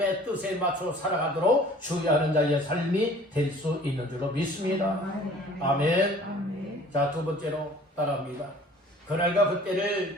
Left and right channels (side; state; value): both; normal; correlation 0.50